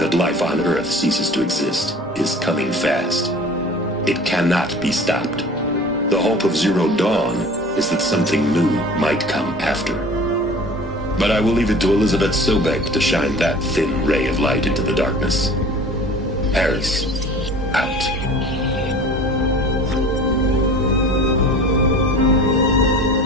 life on Earth ceases to exist is coming fast. It cannot be stopped. The hope of Zero Dawn is that something new might come after. But I will leave it to Elizabeth Sobek to shine that thin ray of light into the darkness. Paris, out.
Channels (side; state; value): both; normal; correlation 0.43